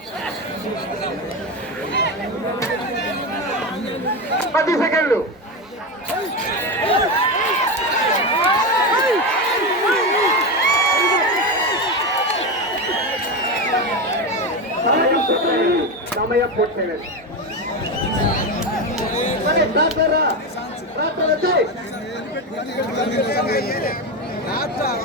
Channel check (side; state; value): both; normal; correlation 0.16